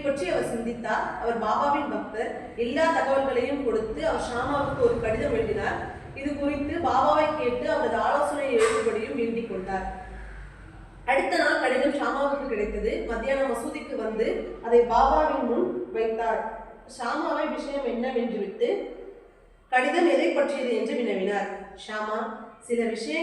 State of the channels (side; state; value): both; identical; correlation 1.00